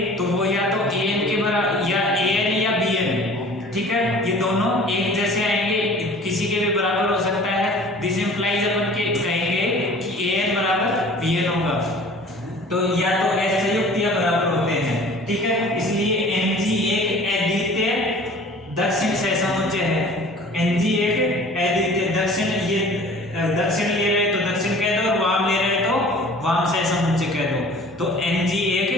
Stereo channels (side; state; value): both; normal; correlation 0.46